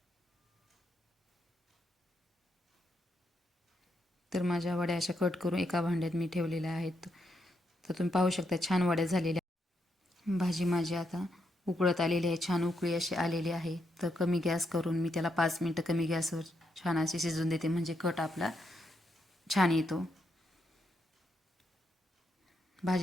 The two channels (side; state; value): both; normal; correlation 0.80